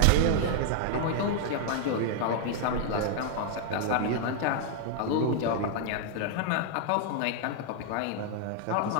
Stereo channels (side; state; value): both; different; correlation 0.00